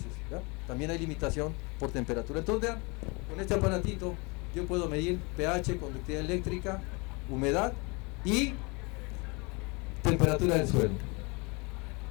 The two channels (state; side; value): quieter; right; 28.7 dB